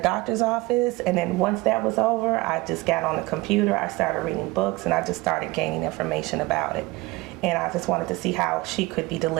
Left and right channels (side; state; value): left; quieter; 20.6 dB